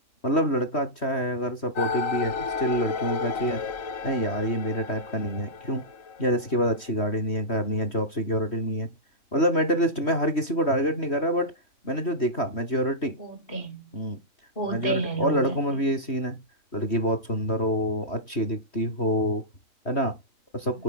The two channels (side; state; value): right; late; 3.1 ms